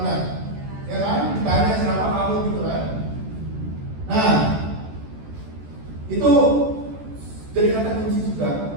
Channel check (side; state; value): left; late; 14 ms